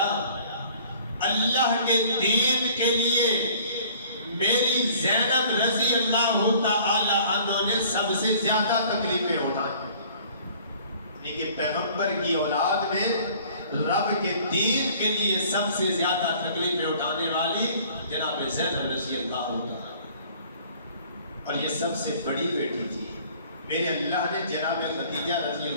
اللہ کے دین کے لیے میری زینب رضی اللہ تعالی عنہ نے سب سے زیادہ تکلیفیں اٹھائیں. لیکن پیغمبر کی اولاد میں رب کے دین کے لیے سب سے زیادہ تکلیفیں اٹھانے والی جناب زینب رضی اللہ تعالی، اور یہ سب سے بڑی بیٹی تھی. میرے اللہ نے جناب خدیجہ رضی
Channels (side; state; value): both; inverted; correlation -0.53